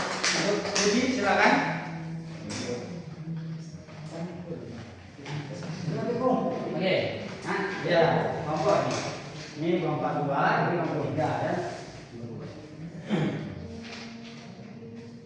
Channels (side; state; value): both; identical; correlation 1.00